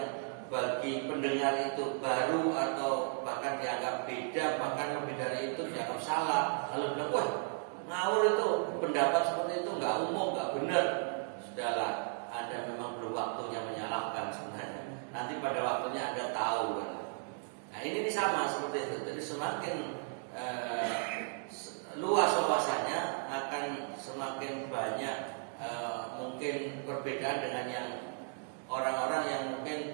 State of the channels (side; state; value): left; silent; 54 dB below the other